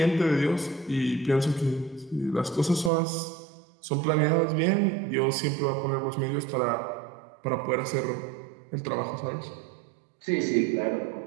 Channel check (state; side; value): drops out; left; at 2.9 s